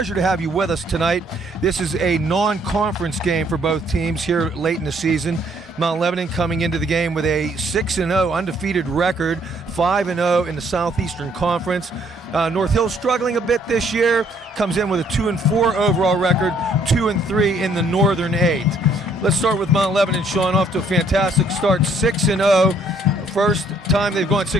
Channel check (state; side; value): normal; both; correlation 0.65